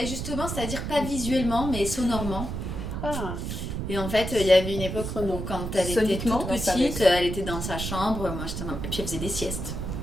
justement, c'est-à-dire pas visuellement, mais sonorement. Ah. Et en fait, il y avait une époque où quand elle était Soniquement, toute dans sa petite, elle était dans sa chambre, moi j'étais et puis elle faisait des siestes.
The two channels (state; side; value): noise; right; rumble, 5 dB below the sound